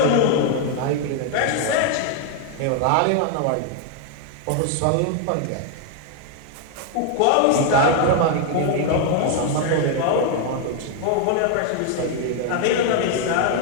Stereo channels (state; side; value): different; both; correlation 0.01